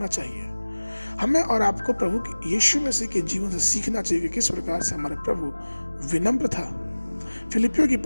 चाहिए। हमें और आपको प्रभु यीशु मसीह के जीवन से सीखना चाहिए कि किस प्रकार से हमारा प्रभु विनम्र था। फिलिपियों की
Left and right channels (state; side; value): inverted; both; correlation -1.00